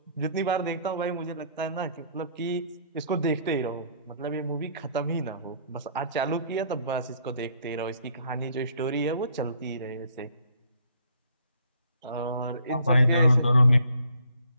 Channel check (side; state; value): both; inverted; correlation -0.61